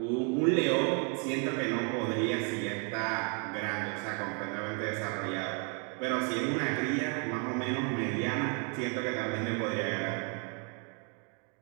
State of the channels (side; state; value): left; quieter; 37.7 dB